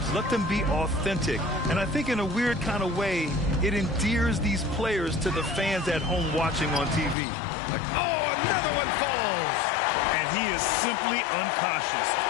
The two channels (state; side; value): drops out; right; at 7.2 s